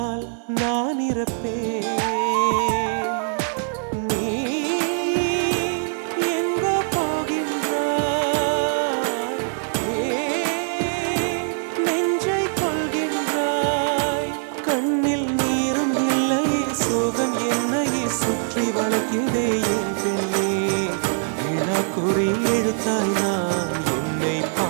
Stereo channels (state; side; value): silent; left; 64 dB below the other